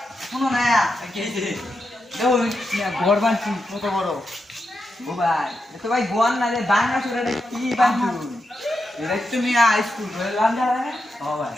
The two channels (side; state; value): both; normal; correlation 0.86